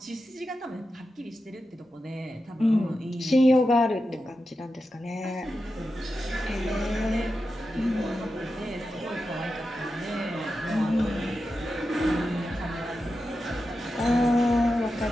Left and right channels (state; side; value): normal; both; correlation 0.90